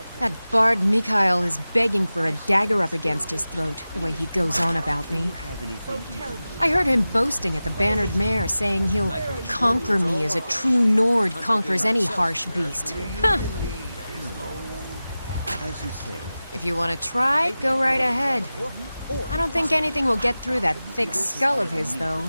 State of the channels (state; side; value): inverted; both; correlation -0.96